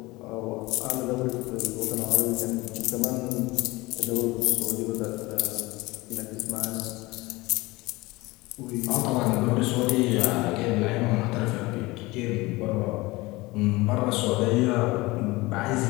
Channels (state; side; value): quieter; right; 21.7 dB